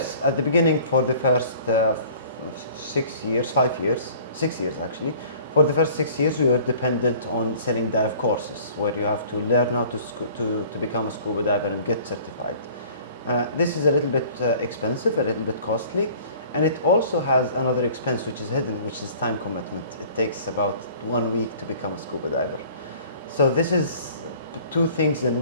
at the beginning for the first 6 years, 5 years, 6 years actually. For the first 6 years, we were dependent on selling dive courses, where you have to learn how to become a scuba diver and get certified. This is a little bit expensive, a little bit costly, and it also has another expense which is hidden, which is time commitment. It takes about 1 week to become a scuba diver. So this is two things in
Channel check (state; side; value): inverted; both; correlation -0.50